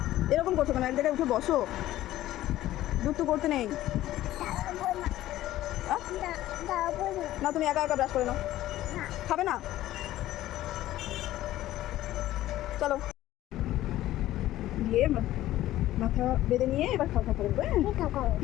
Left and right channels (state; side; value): quieter; right; 14.6 dB